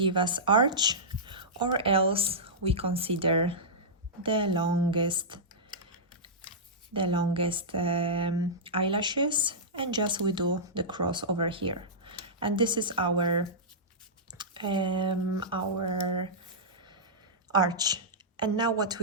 us arch, or else we consider the longest eyelashes, and just we do the cross over here. And this is our arch. And now what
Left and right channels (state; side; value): normal; both; correlation -0.14